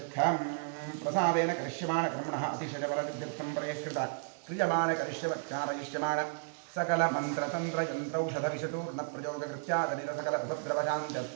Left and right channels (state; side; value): silent; left; digital silence